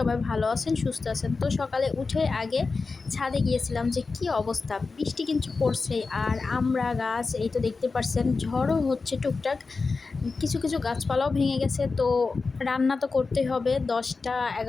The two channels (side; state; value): right; quieter; 4.2 dB